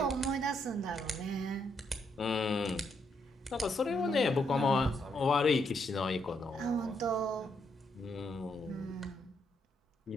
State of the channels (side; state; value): both; normal; correlation 0.76